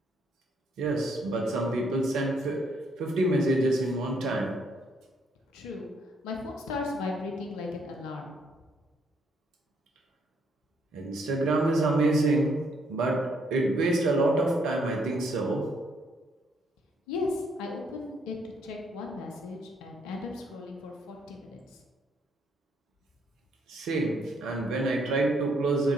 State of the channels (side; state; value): both; normal; correlation 0.70